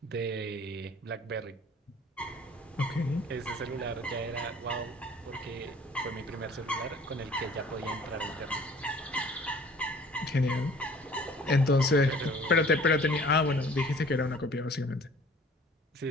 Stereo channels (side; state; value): both; normal; correlation 0.52